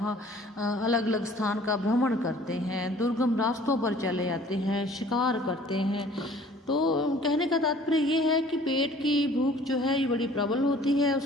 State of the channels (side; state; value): both; normal; correlation 0.52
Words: अलग अलग स्थान का भ्रमण करते हैं, दुर्गम रास्तों पर चले जाते हैं, शिकार करते हैं। तो कहने का तात्पर्य ये है कि पेट की भूख जो है ये बड़ी प्रबल होती है।